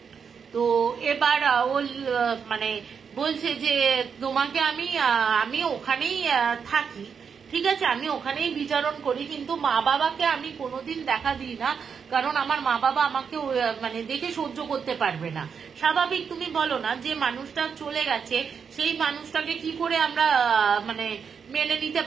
তো এবার ও মানে বলছে যে তোমাকে আমি ওখানেই থাকি, ঠিক আছে, আমি ওখানেই বিচরণ করি, কিন্তু মা বাবাকে আমি কোনোদিন দেখা দিই না, কারণ আমার মা বাবা আমাকে মানে দেখে সহ্য করতে পারবে না। স্বাভাবিক, তুমি বলো না, যে মানুষটা চলে গেছে সেই মানুষটাকে কি করে আমরা মানে মেনে নিতে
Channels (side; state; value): left; quieter; 6.5 dB